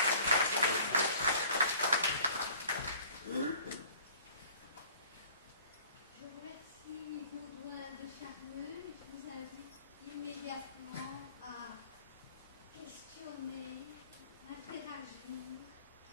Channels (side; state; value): both; inverted; correlation -0.49